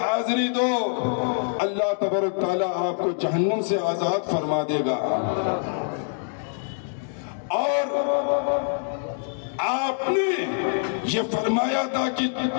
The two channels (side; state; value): right; silent; digital silence